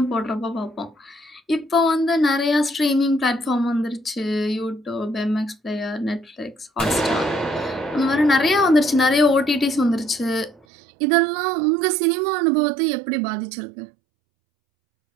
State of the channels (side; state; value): left; drops out; at 10.6 s